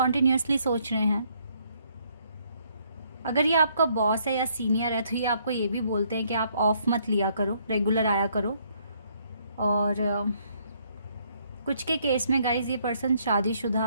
सोच रहे हैं। अगर ये आपका बॉस है या सीनियर है तो ये आपको ये भी बोलते हैं कि आप ऑफ मत लिया करो, रेगुलर आया करो। और कुछ के केस में गाइज ये पर्सन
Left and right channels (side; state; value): both; inverted; correlation -0.68